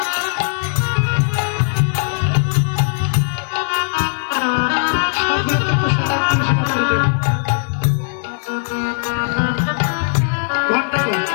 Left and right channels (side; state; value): right; silent; digital silence